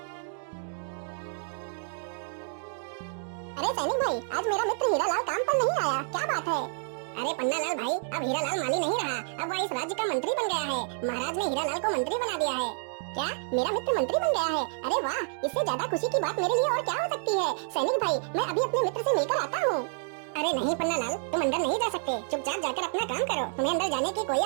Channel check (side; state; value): left; silent; digital silence